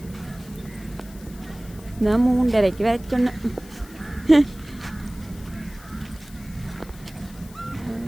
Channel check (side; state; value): left; noise; hiss, 22 dB below the sound